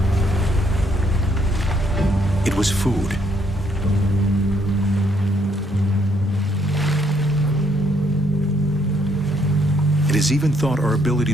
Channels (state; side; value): normal; both; correlation 0.70